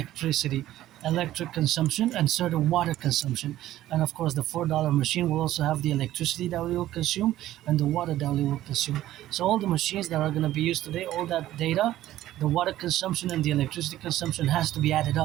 electric consumption and certain water consumption. And of course, the $4 machine will also have the electricity that we will consume and the water that we will consume. So all the machines that are going to be used today, all that data, the water consumption and the electricity consumption has to be added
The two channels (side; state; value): left; quieter; 14.0 dB